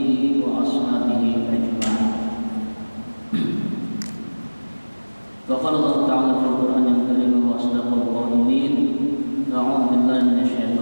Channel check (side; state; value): both; inverted; correlation -1.00